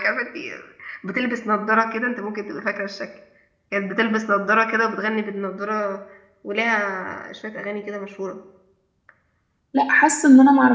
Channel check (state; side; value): identical; both; correlation 1.00